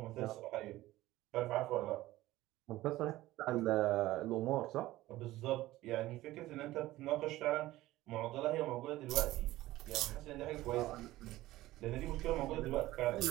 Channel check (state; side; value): quieter; left; 16.7 dB